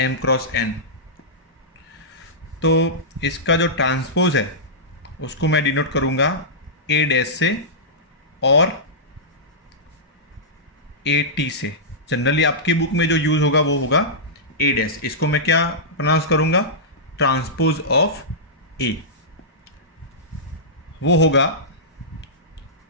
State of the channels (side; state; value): both; normal; correlation -0.14